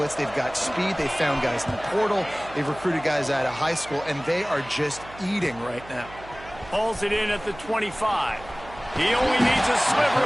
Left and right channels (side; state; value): right; noise; hum, 18 dB below the sound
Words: They've got speed. They've found guys in the portal. They've recruited guys out of high school, and they are just eating right now. Pulls it in at the 25. He only needs a sliver